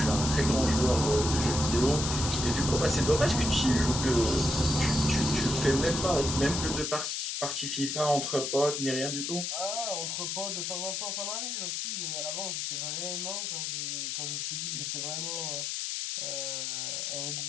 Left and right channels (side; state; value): left; noise; hiss, 2 dB below the sound